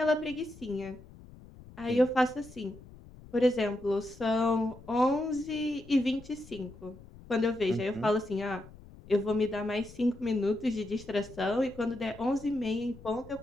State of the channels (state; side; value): noise; left; rumble, 19 dB below the sound